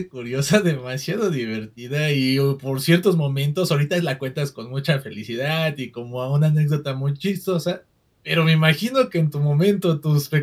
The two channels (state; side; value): identical; both; correlation 1.00